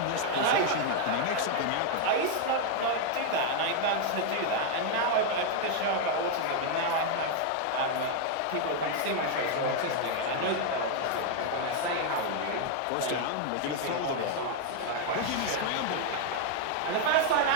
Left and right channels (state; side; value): different; both; correlation 0.00